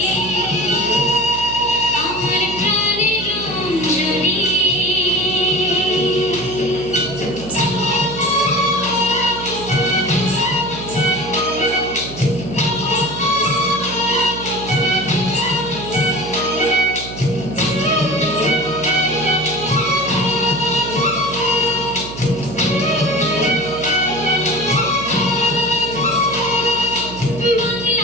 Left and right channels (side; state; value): right; noise; hum, 11 dB below the sound